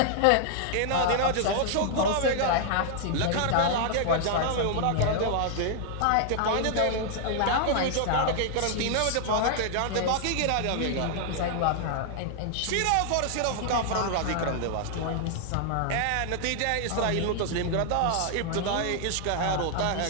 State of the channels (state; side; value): different; both; correlation -0.01